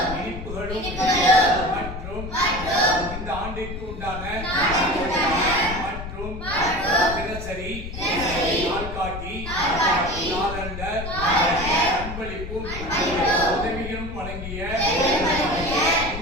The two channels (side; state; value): left; noise; rumble, 8 dB below the sound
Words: இனிப்புகளும் மற்றும் இந்த ஆண்டிற்கு உண்டான மற்றும் தினசரி நாள்காட்டி காலண்டர் அன்பளிப்பும் உதவிகளும் வழங்கிய